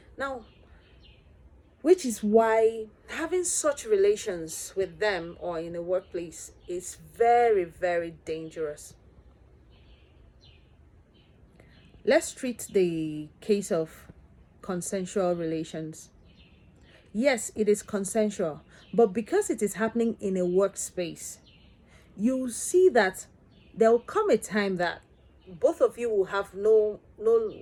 Now, which is why having such relations with them or in a workplace is very, very dangerous. Let's treat the case of consensual relations. Yes, it is consensual, but because it is happening in a workspace, you see that there will come a time that both of you will have no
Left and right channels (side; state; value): both; identical; correlation 1.00